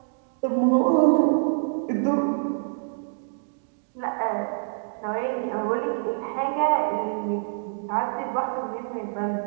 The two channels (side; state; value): left; silent; digital silence